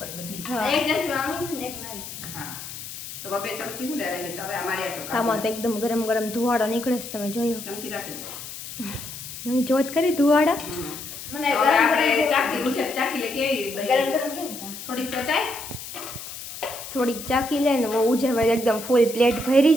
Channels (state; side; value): noise; left; hiss, 11 dB below the sound